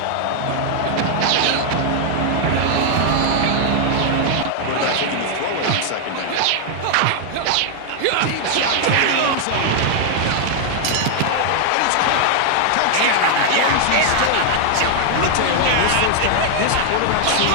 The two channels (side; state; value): both; different; correlation 0.00